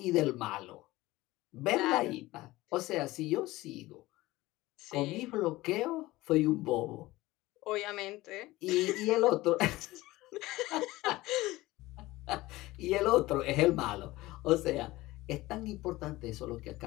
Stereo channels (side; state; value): right; quieter; 18.7 dB